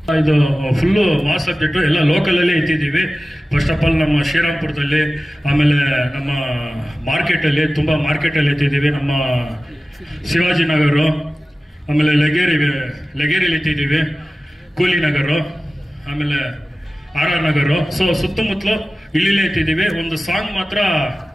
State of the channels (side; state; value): both; normal; correlation 0.96